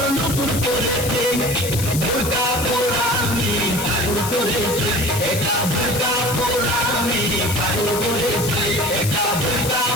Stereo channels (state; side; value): noise; left; hiss, 6 dB below the sound